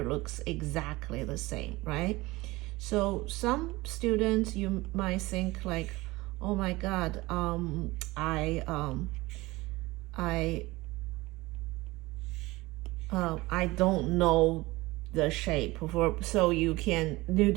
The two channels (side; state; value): left; quieter; 20.9 dB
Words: looks exactly the same, right? So some students, you might think like, oh my God, I don't know the shape for, so you